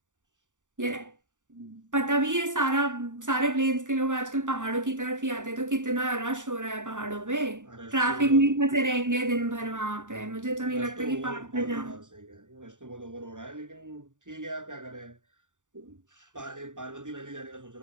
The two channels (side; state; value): left; late; 0.86 ms